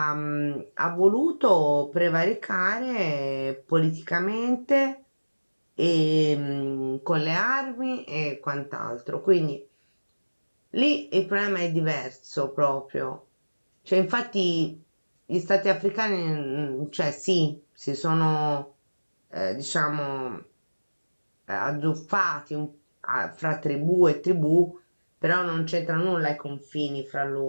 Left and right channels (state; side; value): inverted; both; correlation -1.00